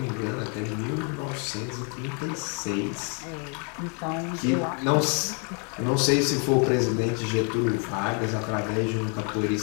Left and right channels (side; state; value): right; quieter; 38.5 dB